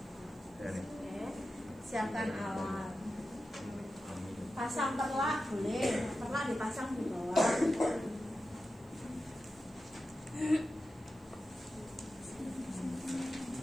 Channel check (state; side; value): noise; right; hiss, 30 dB below the sound